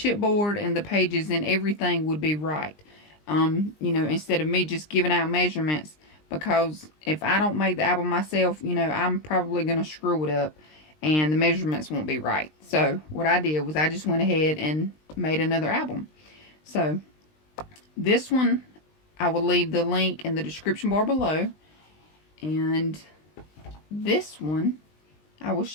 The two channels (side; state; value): right; late; 20 ms